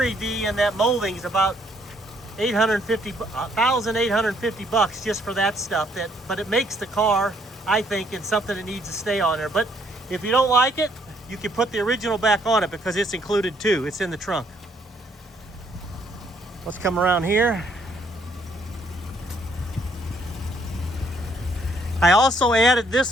V and that molding is about $1,850 just for that stuff. But it makes the car, I think, in something that needs to stay on there. But if you don't like it, you can put the original back on it because it's included too. It's in the trunk. Let's come around here. I also added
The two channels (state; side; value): normal; both; correlation 0.68